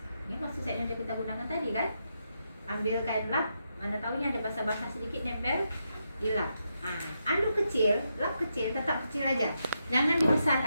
Ini kartu setnya yang kita gunakan tadi kan. Ambil kain lap, mana tahu ini ada basah-basah sedikit, nempel, dilap. Nah, anduk kecil, lap kecil, tetap kecil aja. Jangan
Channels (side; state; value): both; inverted; correlation -0.83